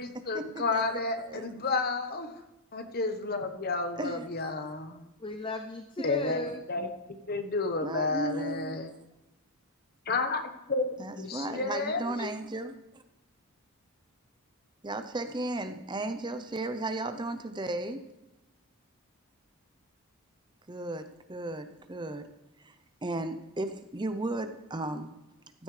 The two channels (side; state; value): both; normal; correlation 0.04